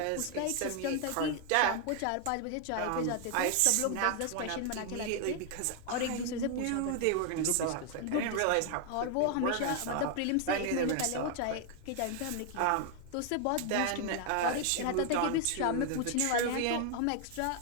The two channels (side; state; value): both; different; correlation 0.00